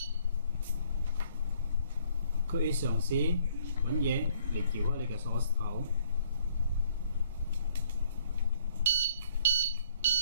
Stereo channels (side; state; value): both; inverted; correlation -0.63